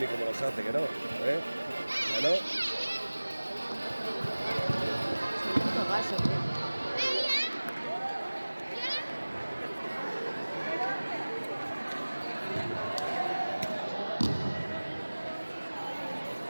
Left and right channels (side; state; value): both; inverted; correlation -1.00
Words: como los hace, que no, ¿eh? ¿Que no? Segundo gaso, ¿qué?